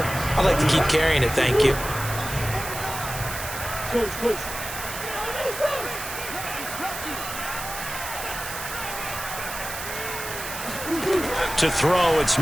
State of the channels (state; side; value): noise; right; hiss, 8 dB below the sound